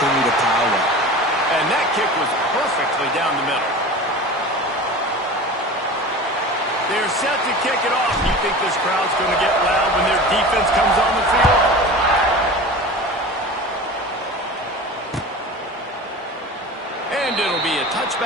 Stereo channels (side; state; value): both; normal; correlation 0.34